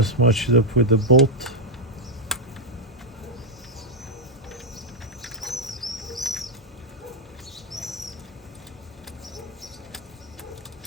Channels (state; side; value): normal; both; correlation -0.03